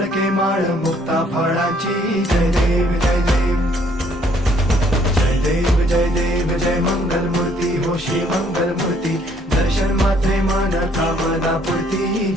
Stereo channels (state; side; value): normal; both; correlation 0.64